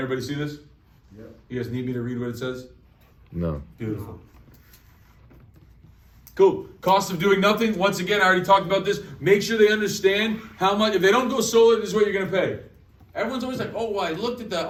everybody see this? Yep. You guys need me to read what it says? No. Beautiful. Cool. Cost of doing nothing. Once again, I already talked about this. Make sure they understand how much. If they don't go solar, this is what you're going to pay. Everyone's always like, oh, well, I looked at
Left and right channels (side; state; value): both; identical; correlation 1.00